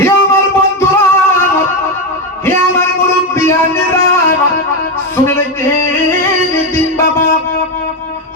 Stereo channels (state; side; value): normal; both; correlation 0.10